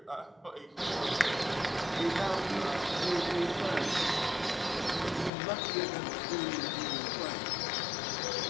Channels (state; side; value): drops out; right; at 5.3 s